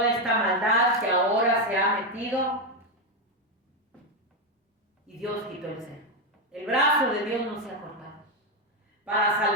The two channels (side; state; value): both; normal; correlation 0.06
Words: esta maldad que ahora se ha metido. Y Dios quitó el cerco. El brazo de Dios no se ha cortado para